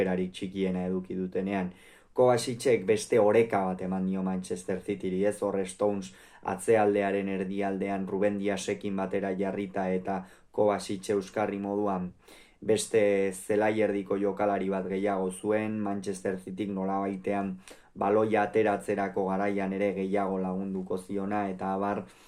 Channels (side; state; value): both; identical; correlation 1.00